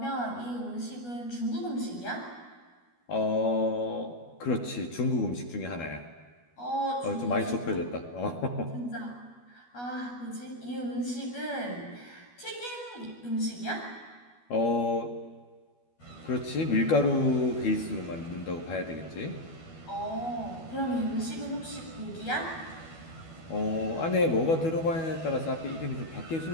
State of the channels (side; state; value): right; late; 12 ms